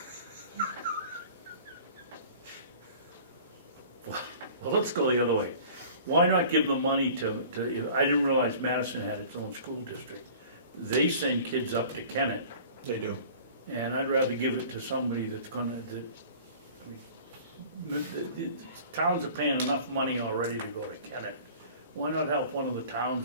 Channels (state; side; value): inverted; both; correlation -0.45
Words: Well, let's go the other way. Why not give the money to, I didn't realize Madison had its own school district. They send kids up to Kennett, They do. and I'd rather give it to somebody that's gonna, the towns are paying enough money already to go to Kennett. Why not help one of the